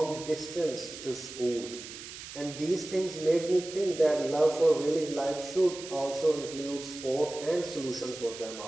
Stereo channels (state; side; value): noise; right; hiss, 12 dB below the sound